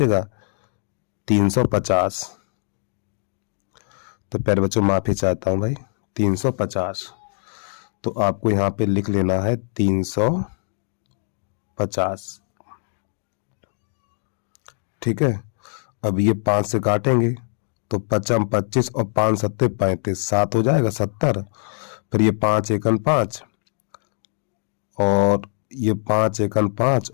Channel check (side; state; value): right; silent; 64 dB below the other